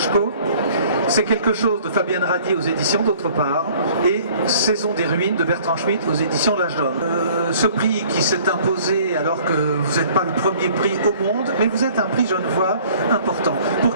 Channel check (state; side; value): inverted; both; correlation -0.53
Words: C'est quelque chose de Fabienne Radi aux éditions d'autre part, et Saison des ruines de Bertrand Schmitt aux éditions L'Âge d'Homme. Ce prix qui s'est imposé alors que vous n'êtes pas le premier prix au monde, mais vous êtes un prix Genevois important. Pour